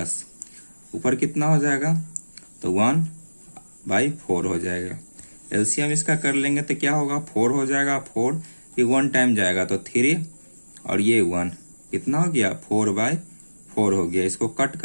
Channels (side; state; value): both; inverted; correlation -1.00